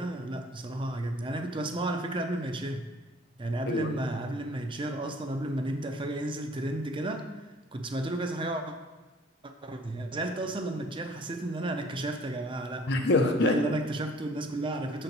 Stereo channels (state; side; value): normal; both; correlation 0.54